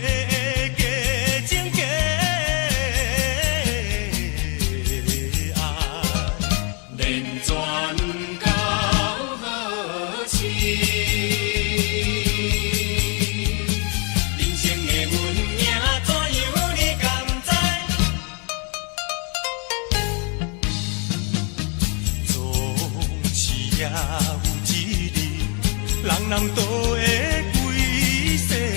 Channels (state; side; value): quieter; right; 35.0 dB